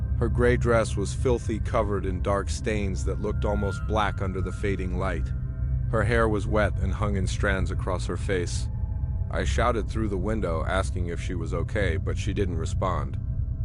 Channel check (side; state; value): both; identical; correlation 1.00